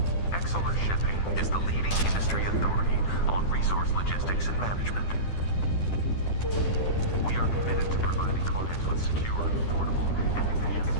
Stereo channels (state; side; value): late; right; 10 ms